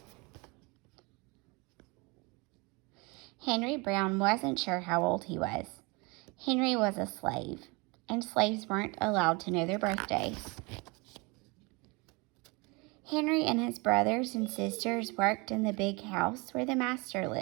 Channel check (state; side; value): quieter; left; 27.8 dB